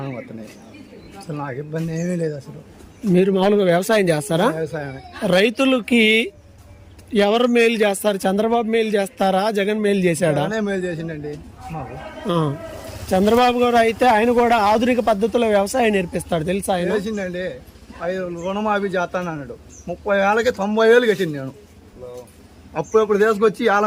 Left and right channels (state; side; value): identical; both; correlation 1.00